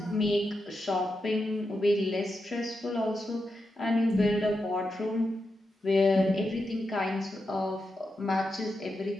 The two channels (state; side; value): normal; both; correlation 0.87